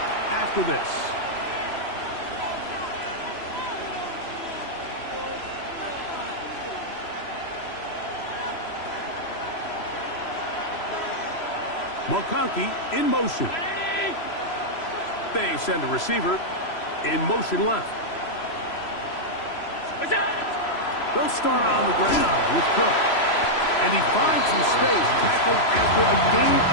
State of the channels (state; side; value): late; right; 3.0 ms